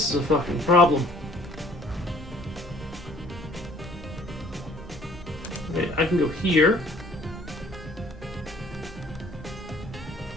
is a fucking problem. Okay, I can go here.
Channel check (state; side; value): normal; both; correlation 0.56